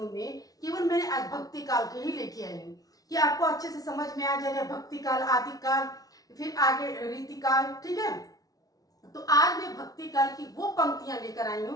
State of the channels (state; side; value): late; right; 0.18 ms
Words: में केवल मैंने आज भक्ति काल के ही लेके आई हूँ कि आपको अच्छे से समझ में आ जाएगा भक्ति काल, आदि काल, फिर आगे रीति काल। ठीक है, तो आज मैं भक्ति काल की वो पंक्तियां लेकर आई